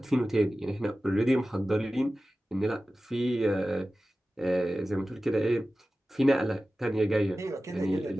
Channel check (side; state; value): both; normal; correlation 0.95